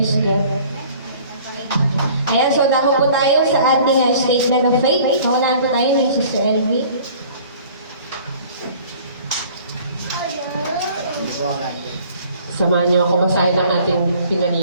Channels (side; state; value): both; inverted; correlation -0.51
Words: God. Ayan, so dako po tayo sa ating statement of faith. Paunahan po tayo ni Sister Elvie. Samahan niyo ako basahin ang ating